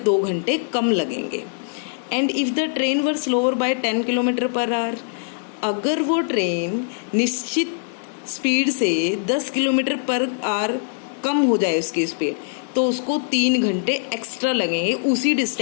2 घंटे कम लगेंगे। And if the train were slower by 10 kilometre per hour, अगर वो ट्रेन निश्चित स्पीड से 10 किलोमीटर पर आवर कम हो जाए उसकी स्पीड, तो उसको 3 घंटे एक्स्ट्रा लगेंगे उसी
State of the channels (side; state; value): right; silent; digital silence